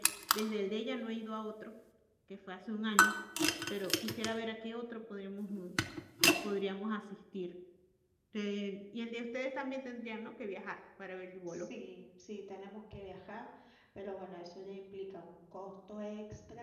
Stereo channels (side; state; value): both; identical; correlation 1.00